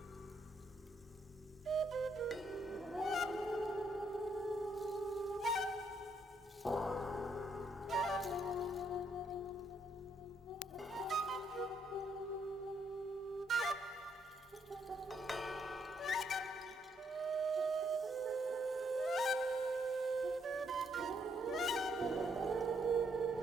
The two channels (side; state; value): both; normal; correlation 0.74